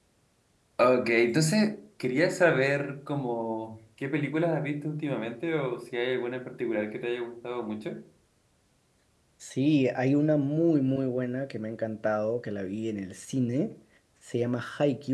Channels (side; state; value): both; identical; correlation 1.00